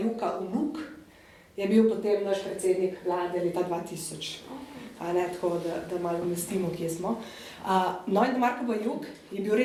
vnuk je bil potem naš predsednik vlade leta 2000. tako da malo umestimo, kje smo. No in Marko Bajuk je bil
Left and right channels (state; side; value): identical; both; correlation 1.00